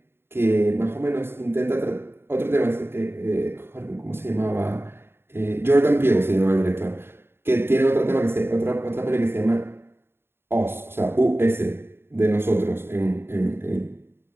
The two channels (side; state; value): left; late; 0.11 ms